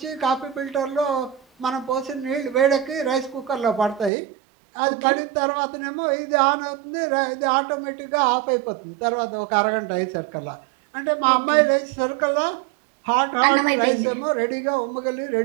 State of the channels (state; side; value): drops out; left; at 4.1 s